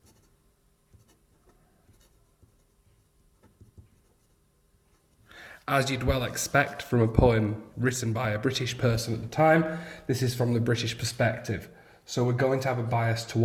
As you'd well expect from a poem written by a British person at the time, this is from the British perspective. So we're going to have a bias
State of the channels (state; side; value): identical; both; correlation 1.00